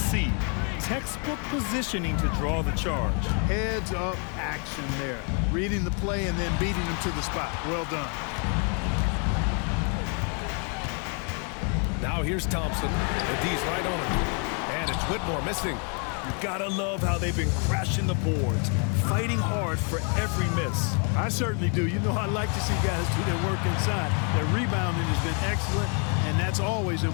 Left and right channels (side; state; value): right; quieter; 38.8 dB